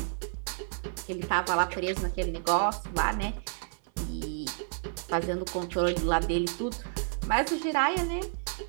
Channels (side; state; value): left; silent; 58 dB below the other